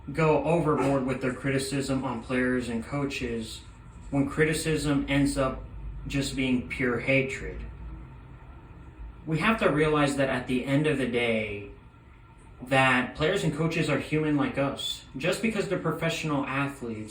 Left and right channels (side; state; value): both; identical; correlation 1.00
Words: go overboard with their criticism on players and coaches when criticism ends up just being pure hatred. We have to realize that at the end of the day, that players and coaches are human like us. Just because they're professional